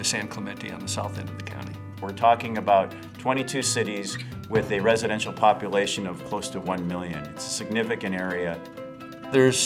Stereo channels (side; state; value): both; identical; correlation 1.00